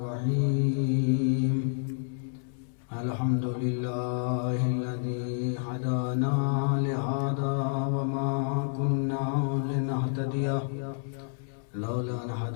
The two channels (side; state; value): right; silent; 58 dB below the other